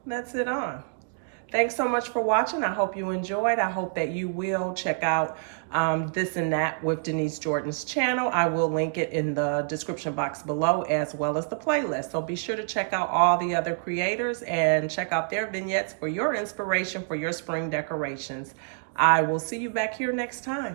That's it on. Thanks so much for watching. I hope you enjoyed. I hope that you will check out This and That with Denise Jordan's channel. I will link it in the description box below, as well as the playlist. So be sure to check out all the other creators and check out their vignettes for your inspiration for your spring decorations. I will see you back here next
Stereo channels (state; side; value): silent; left; digital silence